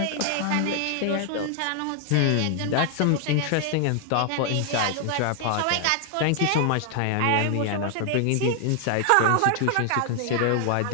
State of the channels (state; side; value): different; both; correlation 0.00